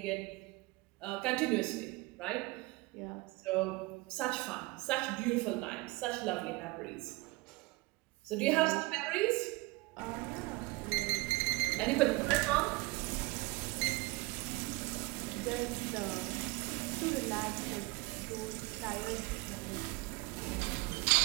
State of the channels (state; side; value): quieter; left; 23.2 dB